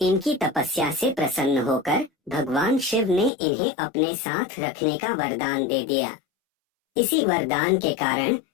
इनकी तपस्या से प्रसन्न होकर भगवान शिव ने इन्हें अपने साथ रखने का वरदान दे दिया। इसी वरदान के कारण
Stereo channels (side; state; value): right; drops out; at 3.3 s